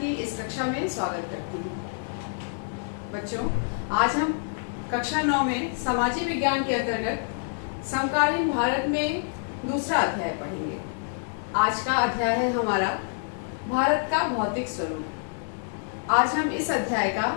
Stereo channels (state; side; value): silent; right; digital silence